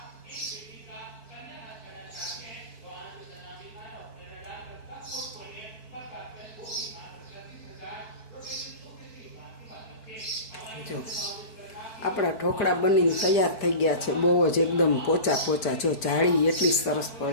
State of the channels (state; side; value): late; right; 4.5 ms